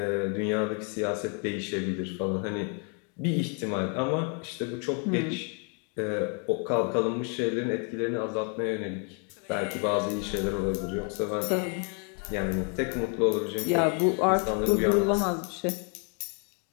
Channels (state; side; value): quieter; right; 39.3 dB